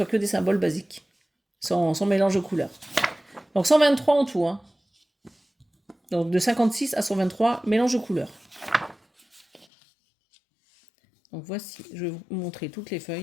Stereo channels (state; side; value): drops out; right; at 9.7 s